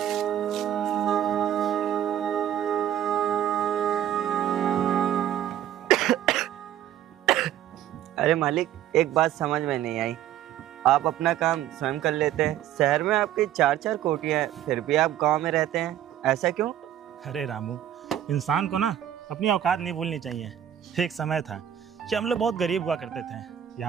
अरे मालिक, एक बात समझ में नहीं आई। आप अपना काम स्वयं कर लेते हैं, शहर में आपकी 4-4 कोठियाँ हैं, फिर भी आप गांव में रहते हैं, ऐसा क्यों? अरे रामू, इंसान को ना अपनी औकात नहीं भूलनी चाहिए। एक समय था कि हम लोग बहुत गरीब हुआ करते थे,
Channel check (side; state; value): left; quieter; 11.1 dB